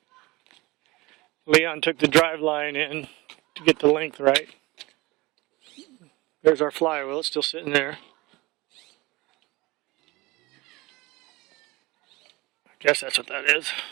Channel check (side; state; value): left; quieter; 22.0 dB